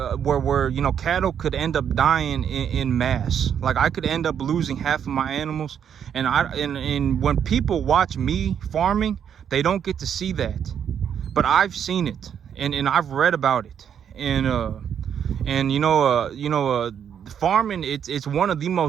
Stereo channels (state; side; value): quieter; left; 8.5 dB